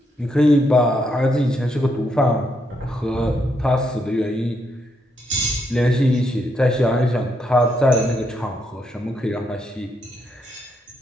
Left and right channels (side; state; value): both; normal; correlation 0.77